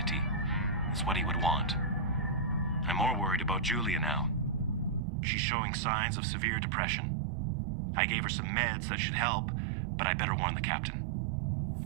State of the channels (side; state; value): left; drops out; at 5.0 s